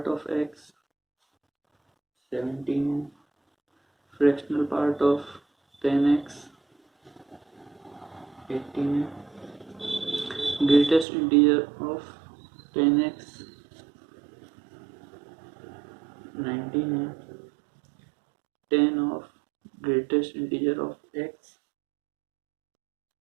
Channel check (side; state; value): left; drops out; at 11.1 s